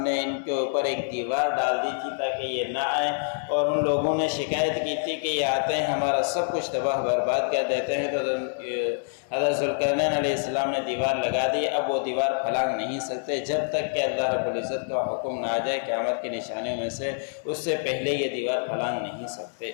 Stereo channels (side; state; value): right; silent; digital silence